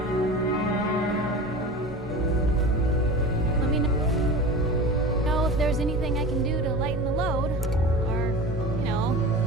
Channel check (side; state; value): both; normal; correlation 0.32